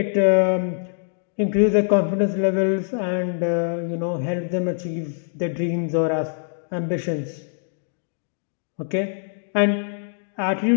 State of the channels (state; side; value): silent; right; digital silence